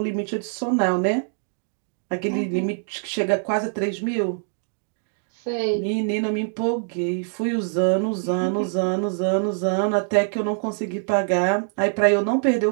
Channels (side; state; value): left; silent; 63 dB below the other